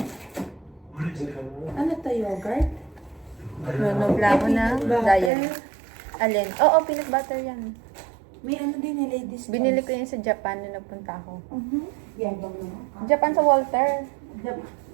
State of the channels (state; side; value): drops out; left; at 5.3 s